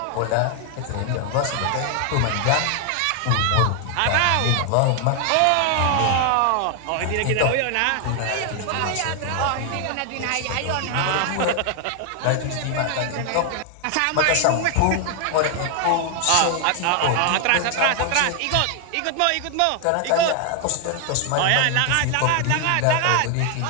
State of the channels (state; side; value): different; both; correlation 0.00